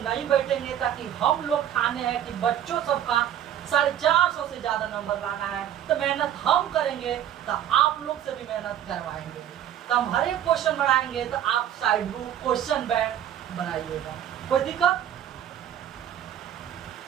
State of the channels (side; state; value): left; quieter; 10.6 dB